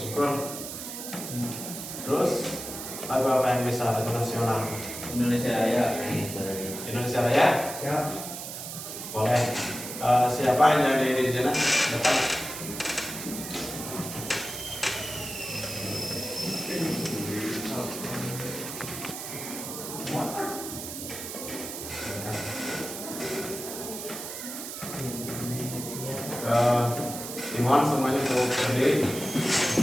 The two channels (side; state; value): right; noise; hiss, 8 dB below the sound